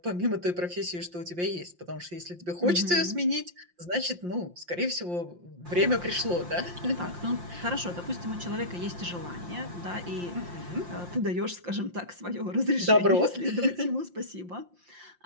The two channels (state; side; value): late; left; 5.7 ms